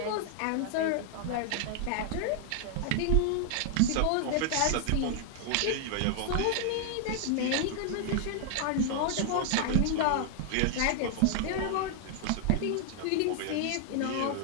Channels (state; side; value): different; both; correlation 0.00